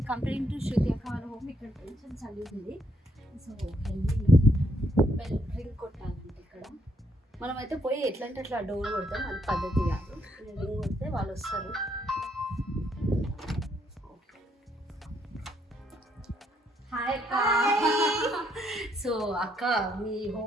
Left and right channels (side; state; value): both; normal; correlation 0.73